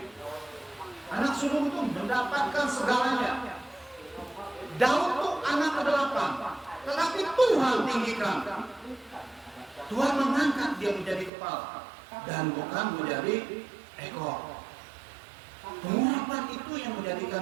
Anak sulung itu mendapatkan segalanya. Daud itu anak ke-8, tetapi Tuhan tinggikan. Tuhan mengangkat dia menjadi kepala dan bukan menjadi ekor. Pengurapan itu yang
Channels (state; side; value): drops out; left; at 11.3 s